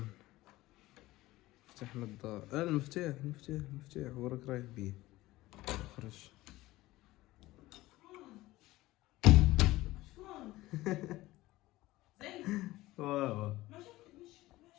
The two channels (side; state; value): right; quieter; 17.9 dB